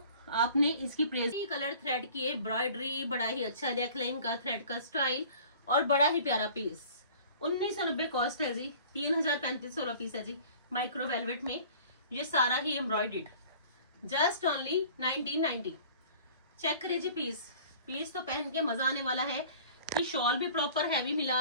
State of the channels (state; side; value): inverted; both; correlation -0.47